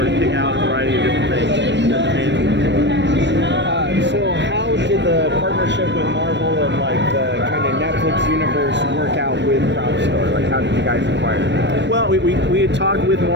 of pick out a variety of different things that the fans would enjoy. So how did the partnership with Marvel and like the kind of Netflix universe work out with Prop Store? Like how did you guys acquire that? Well, we had talked with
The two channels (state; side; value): late; left; 0.52 ms